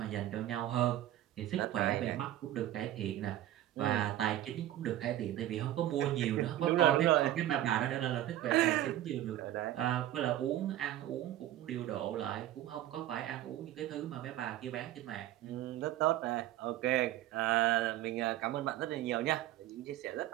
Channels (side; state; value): left; quieter; 13.3 dB